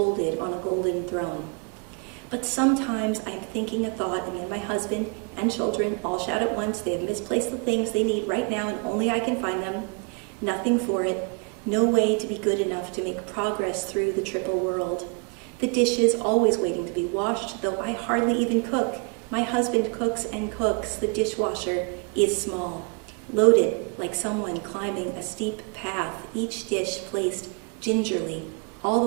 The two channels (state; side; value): quieter; left; 34.1 dB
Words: on a golden throne. But sometimes I'm thinking a thought, and then my husband and children all shout at once. They have misplaced the things they need right now, and only I can find them. Nothing for it. No way to be good enough to make progress through the triple world. The dishes always waiting to be washed, though I hardly even cook. My husband cooks and cooks. The dishwasher is small, loaded like someone climbing a steep path, each dish placed gingerly all